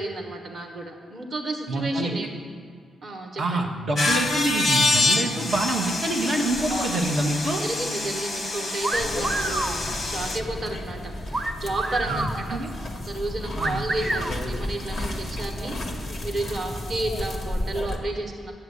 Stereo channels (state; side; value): normal; both; correlation 0.80